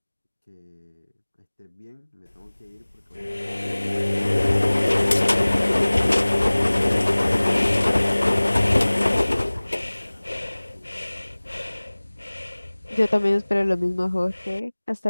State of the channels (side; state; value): both; inverted; correlation -1.00